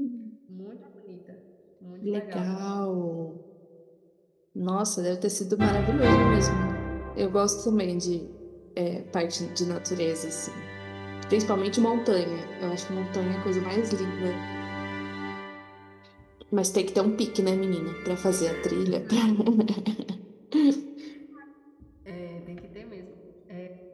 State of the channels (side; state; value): both; identical; correlation 1.00